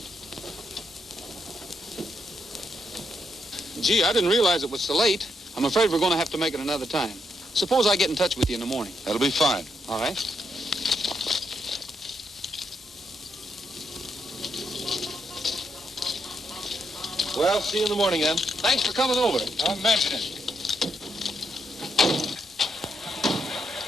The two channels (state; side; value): normal; both; correlation 0.79